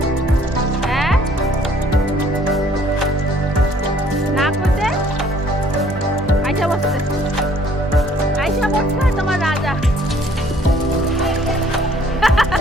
হ্যাঁ না করতে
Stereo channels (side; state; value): both; normal; correlation 0.59